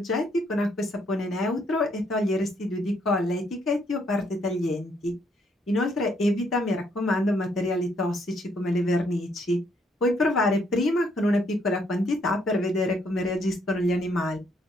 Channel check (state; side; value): normal; both; correlation 0.71